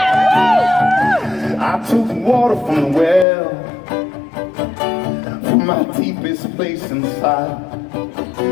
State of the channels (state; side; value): drops out; right; at 3.2 s